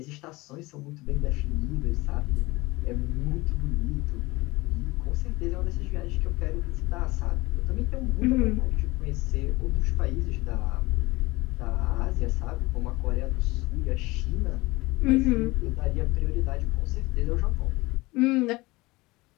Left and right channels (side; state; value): right; quieter; 21.7 dB